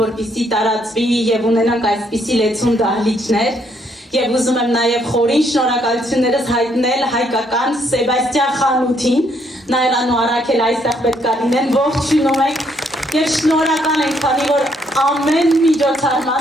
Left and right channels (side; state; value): both; normal; correlation 0.71